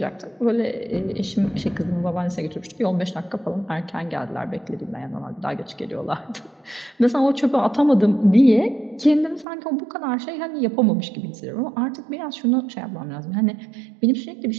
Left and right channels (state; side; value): drops out; left; at 9.5 s